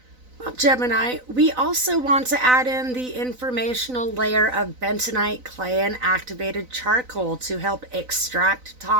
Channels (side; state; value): left; late; 4.0 ms